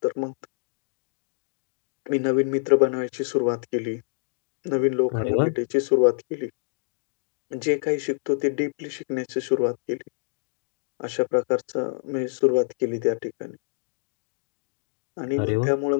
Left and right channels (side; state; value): right; silent; digital silence